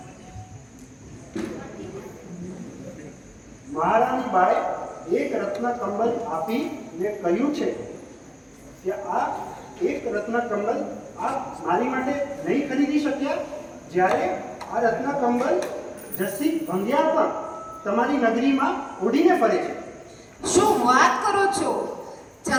મહારાણી બાએ એક રત્ન કંબલ આપીને કહ્યું છે કે આ એક રત્ન કમલ આપ મારી માટે નહીં ખરીદી શક્યા, જ્યારે આ રત્ન કમલ જસ્સી ભંગિયાર પણ તમારી નગરીમાં ઉડીને ફરે છે. શું વાત કરો છો?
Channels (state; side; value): identical; both; correlation 1.00